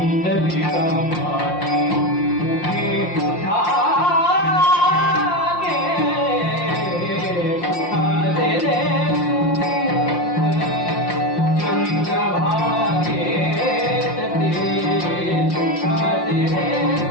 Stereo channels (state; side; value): late; right; 5.7 ms